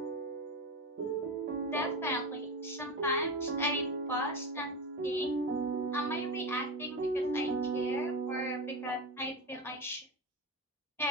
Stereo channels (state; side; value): normal; both; correlation 0.19